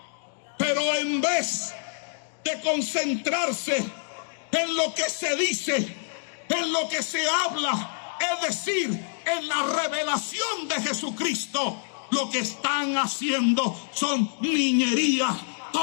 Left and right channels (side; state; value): right; silent; digital silence